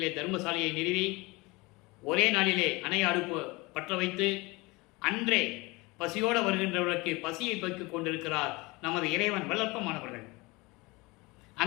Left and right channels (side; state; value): right; quieter; 23.9 dB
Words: தர்மசாலையை நிறுவி ஒரே நாளிலே அணைய அடுப்பு பற்ற வைத்து அன்றே பசியோடு வருகின்றவர்களுக்கு பசியை போக்கிக் கொண்டிருக்கிறார் நமது இறைவன் வல்லப்பமானவர்கள்.